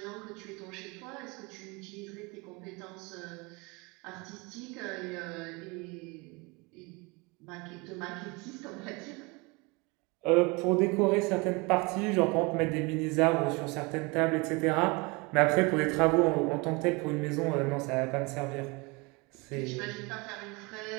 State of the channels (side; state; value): left; quieter; 27.2 dB